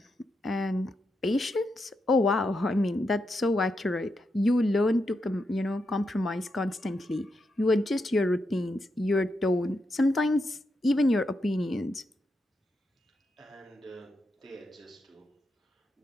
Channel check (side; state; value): both; normal; correlation 0.84